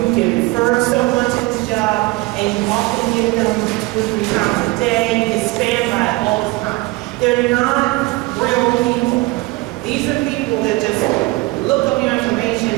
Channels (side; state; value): left; quieter; 22.0 dB